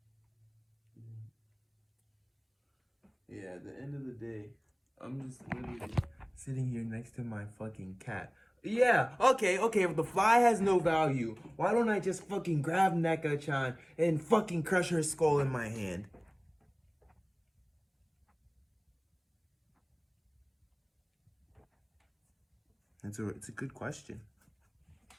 Yeah, at the end of the day, I'm just literally sitting here next to my fucking cat. Yeah, okay, if the fly has no value, why don't I just fucking grab Neko-chan and fucking crush her skull in my hand? It's a good question.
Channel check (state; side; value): identical; both; correlation 1.00